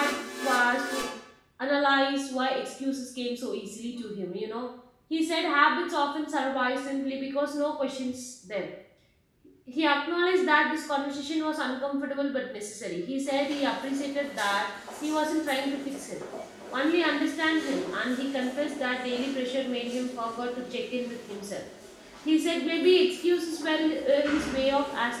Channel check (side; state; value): both; identical; correlation 1.00